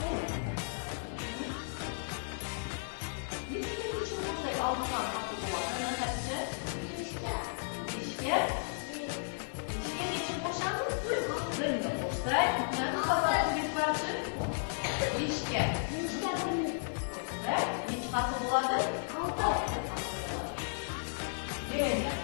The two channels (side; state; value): right; silent; digital silence